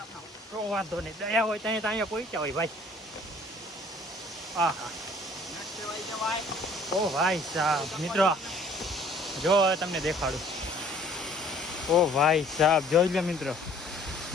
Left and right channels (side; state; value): both; normal; correlation 0.55